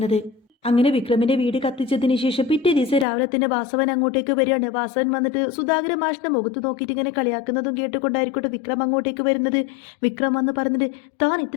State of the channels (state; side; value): drops out; right; at 3.1 s